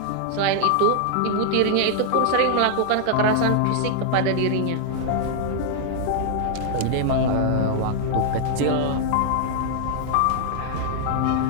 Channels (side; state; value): both; different; correlation -0.01